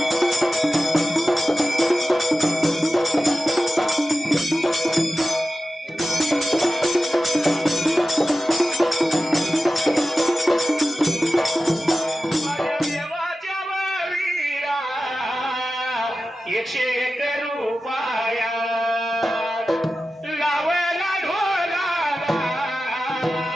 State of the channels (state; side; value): normal; both; correlation 0.94